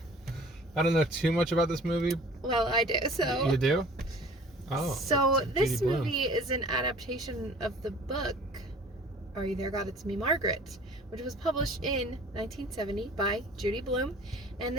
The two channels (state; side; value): normal; both; correlation 0.47